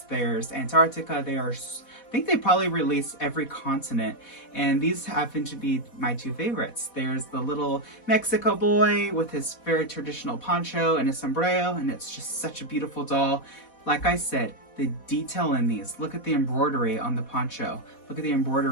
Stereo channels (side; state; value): right; late; 4.1 ms